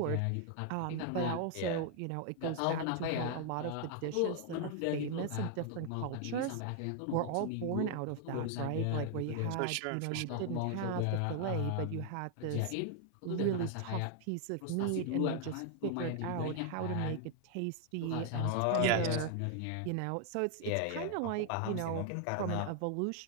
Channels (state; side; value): different; both; correlation 0.00